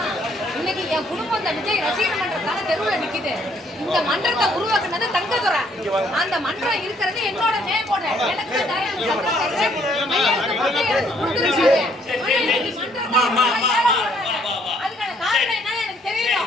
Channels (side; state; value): both; normal; correlation 0.66